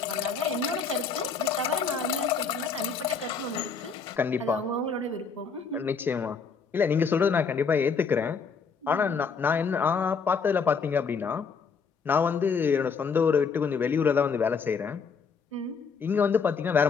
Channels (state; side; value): quieter; right; 5.5 dB